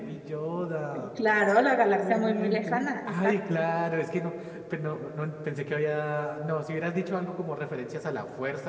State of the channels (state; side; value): identical; both; correlation 1.00